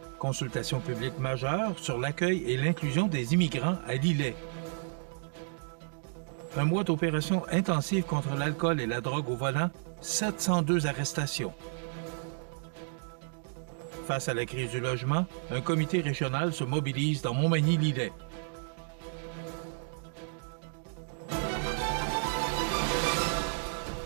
Consultation publique majeure sur l'accueil et l'inclusion des immigrants à Lillet. Un mois d'opération intensive contre l'alcool et la drogue au volant, 702 arrestations. Face à la crise du logement, un comité régional se mobilise dans Montmagny-Lillet.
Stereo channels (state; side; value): silent; left; digital silence